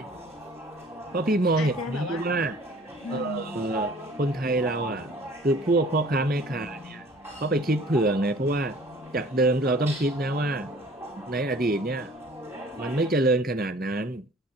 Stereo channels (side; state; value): both; normal; correlation 0.50